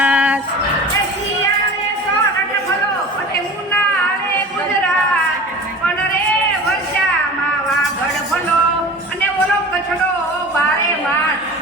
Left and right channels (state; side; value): normal; both; correlation 0.37